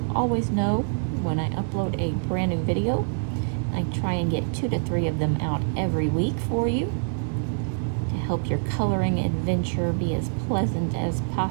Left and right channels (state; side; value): silent; left; digital silence